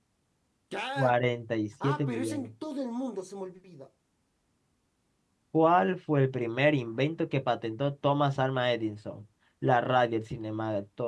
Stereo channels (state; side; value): identical; both; correlation 1.00